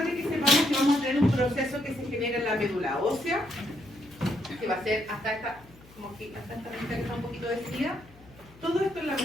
que sepamos que vamos a tener un proceso que se genera en la médula ósea, que va a ser hasta esta, como que hasta esta recta que está un poquito decidida. Todo esto en la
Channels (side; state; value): left; noise; hum, 24 dB below the sound